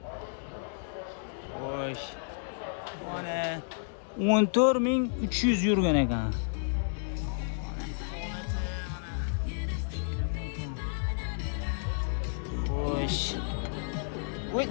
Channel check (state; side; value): silent; right; digital silence